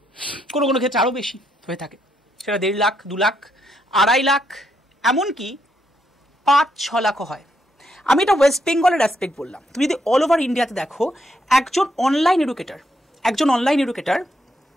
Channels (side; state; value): both; normal; correlation 0.77